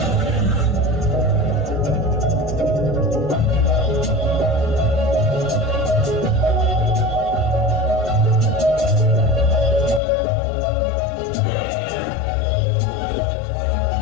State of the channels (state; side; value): drops out; right; at 10.0 s